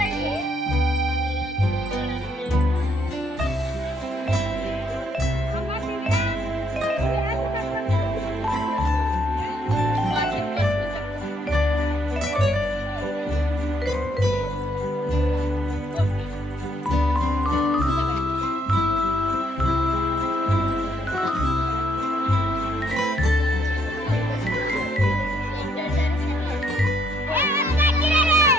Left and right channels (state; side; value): normal; both; correlation 0.72